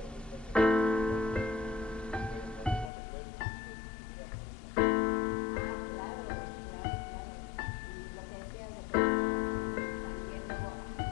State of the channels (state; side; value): drops out; right; at 2.9 s